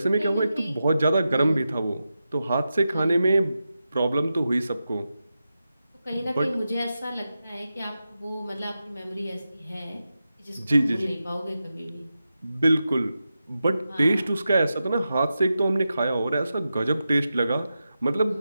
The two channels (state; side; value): inverted; both; correlation -0.91